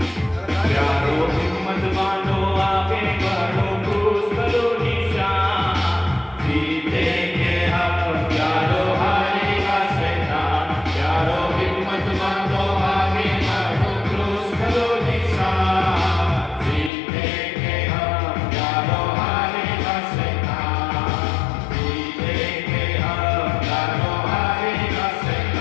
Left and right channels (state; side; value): drops out; right; at 16.9 s